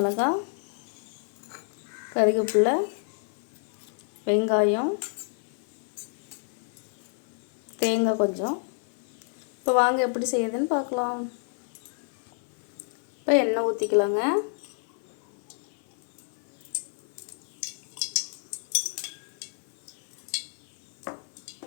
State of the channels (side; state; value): right; silent; 56 dB below the other